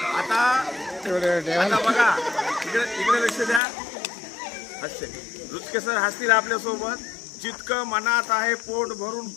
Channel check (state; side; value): drops out; right; at 3.6 s